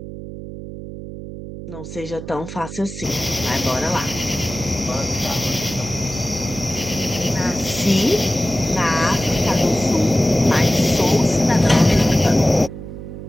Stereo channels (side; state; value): right; noise; hum, 11 dB below the sound